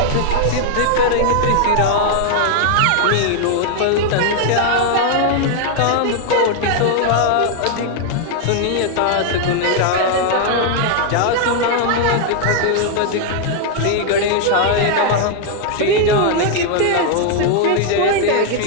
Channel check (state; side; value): different; both; correlation 0.00